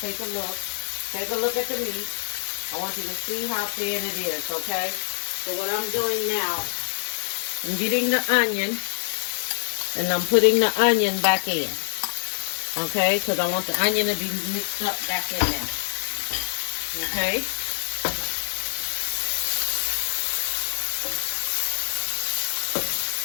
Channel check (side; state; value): right; silent; digital silence